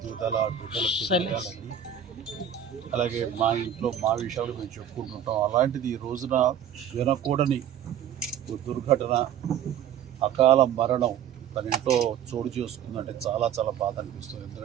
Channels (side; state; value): left; quieter; 9.1 dB